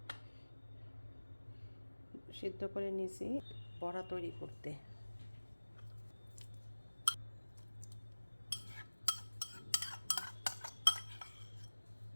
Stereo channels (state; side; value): inverted; both; correlation -1.00